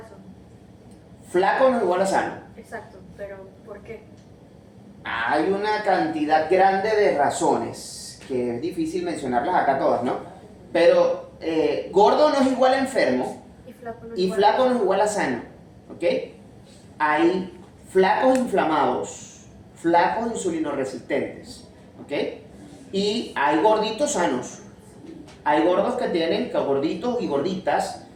Flaco no es igual a sano. Exacto, pero ¿por qué? Hay una cantidad grande de razones, que es difícil mencionarlas acá todas, ¿no? Pero gordo no es igual a enfermo y flaco no es igual a sano, ¿ok? Hay flacos inflamados, flacos insulinoresistentes, ¿ok? Y hay gorditos sanos. Hay gordos gorditos y gorditas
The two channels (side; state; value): both; identical; correlation 1.00